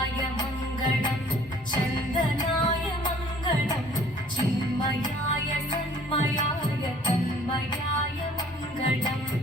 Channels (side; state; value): both; normal; correlation 0.54